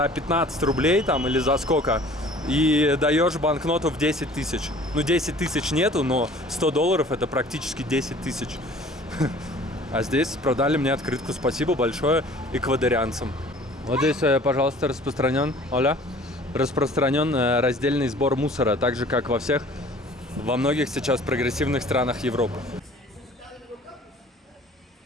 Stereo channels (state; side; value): normal; both; correlation 0.49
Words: 15 рублей там или за сколько, и даешь банкноту в 10 тысяч. Ну, 10 тысяч нету, но $100 это практически 10 тысяч. А здесь продали мне открытку. Спасибо большое эквадорянцам. Вот здесь, пожалуйста, распространен раздельный сбор мусора, так же, как во многих сейчас прогрессивных странах Европы.